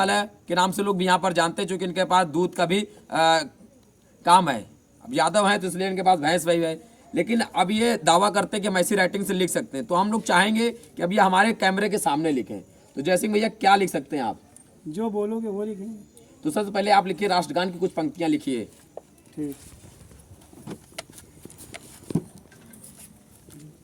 के नाम से लोग भी यहाँ पर जानते हैं, चूँकि इनके पास दूध का भी काम है। अब यादव हैं तो इसलिए इनके पास भैंस वही है। लेकिन अब ये दावा करते हैं कि हम ऐसी राइटिंग से लिख सकते हैं, तो हम लोग चाहेंगे कि अब ये हमारे कैमरे के सामने लिखें। तो जय सिंह भैया, क्या लिख सकते हैं आप? जो बोलोगे वो लिखेंगे। तो सबसे पहले आप लिखिए, राष्ट्रगान की कुछ पंक्तियां लिखिए। ठीक।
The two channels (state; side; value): identical; both; correlation 1.00